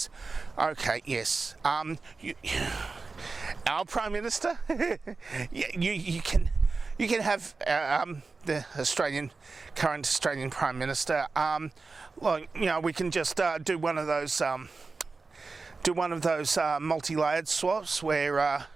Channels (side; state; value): left; quieter; 4.1 dB